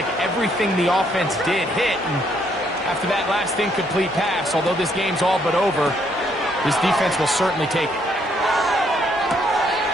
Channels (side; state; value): both; normal; correlation 0.70